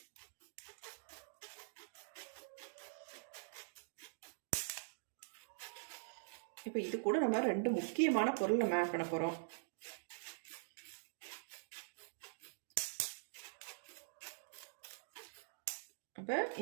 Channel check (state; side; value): silent; left; digital silence